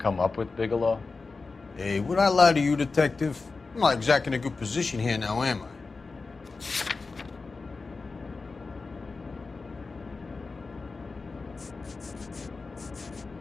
up with, Bigelow? Hey, would I lie to you, detective? I'm not exactly in a good position here now, am I?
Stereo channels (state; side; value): quieter; right; 4.1 dB